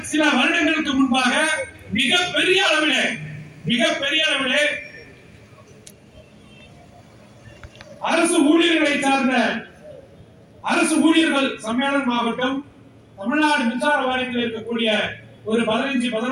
சில வருடங்களுக்கு முன்பாக மிகப்பெரிய அளவிலே அரசு ஊழியர்களை சார்ந்த அரசு ஊழியர்கள் சம்மேளனம் ஆகட்டும், தமிழ்நாடு மின்சார வாரியத்தில் இருக்கக்கூடிய ஒரு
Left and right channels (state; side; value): identical; both; correlation 1.00